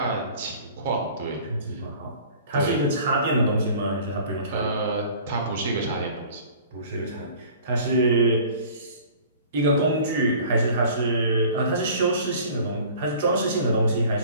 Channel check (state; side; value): inverted; both; correlation -0.47